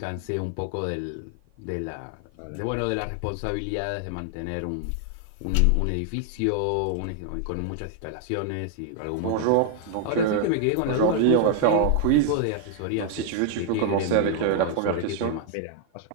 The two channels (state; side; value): different; both; correlation 0.00